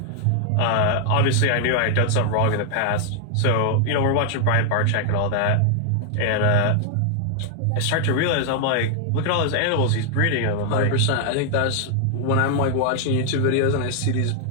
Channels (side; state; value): both; different; correlation 0.00